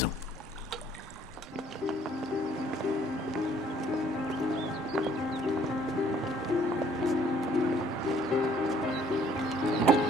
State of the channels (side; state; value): both; normal; correlation 0.60